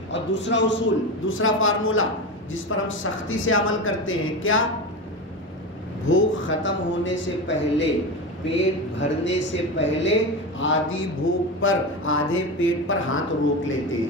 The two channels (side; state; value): both; normal; correlation 0.22